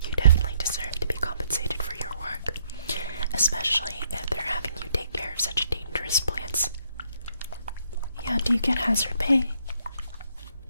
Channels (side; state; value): both; inverted; correlation -0.70